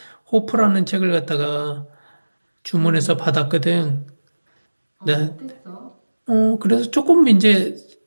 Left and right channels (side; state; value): both; inverted; correlation -1.00